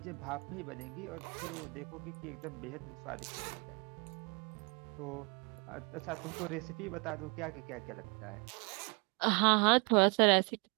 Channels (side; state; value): left; quieter; 31.9 dB